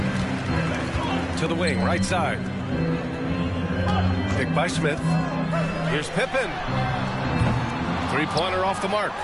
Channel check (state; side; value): identical; both; correlation 1.00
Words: To the wing, right side. Picked by Smith. Here's Pippen. Three-pointer off the mark.